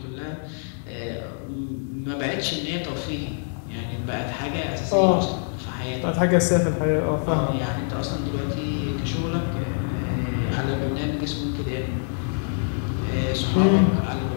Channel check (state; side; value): silent; right; 62 dB below the other